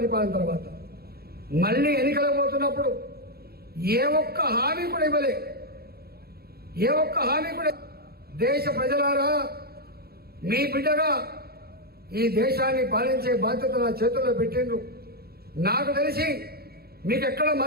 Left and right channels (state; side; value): late; left; 0.45 ms